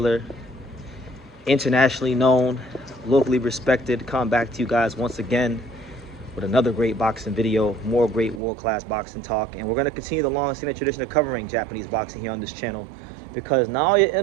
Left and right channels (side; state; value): left; drops out; at 8.4 s